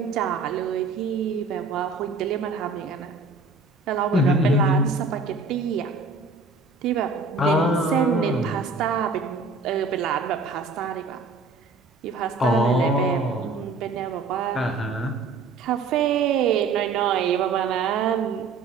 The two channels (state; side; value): quieter; left; 4.0 dB